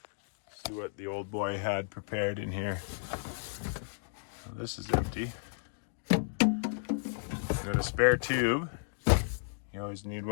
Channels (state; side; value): silent; right; digital silence